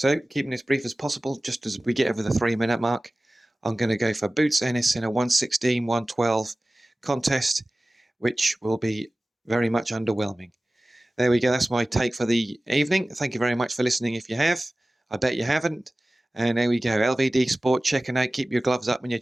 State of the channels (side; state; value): both; normal; correlation 0.97